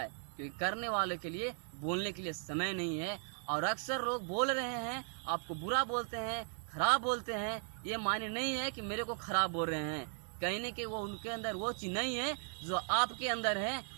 क्योंकि करने वाले के लिए बोलने के लिए समय नहीं है। और अक्सर लोग बोल रहे हैं, आपको बुरा बोलते हैं, खराब बोलते हैं, ये मायने नहीं है कि मेरे को खराब बोल रहे हैं। कहीं न कहीं वो उनके अंदर वो चीज नहीं है जो आपके अंदर है,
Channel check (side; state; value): left; silent; 53 dB below the other